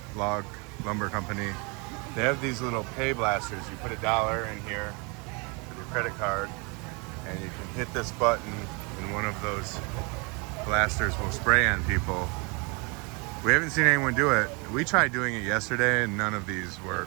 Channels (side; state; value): left; quieter; 31.0 dB